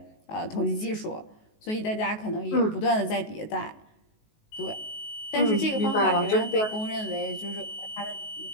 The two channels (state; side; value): late; right; 19 ms